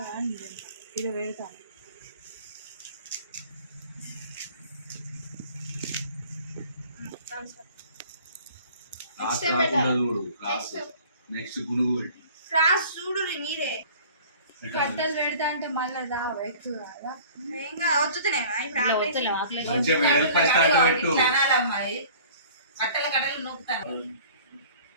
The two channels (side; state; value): both; inverted; correlation -0.47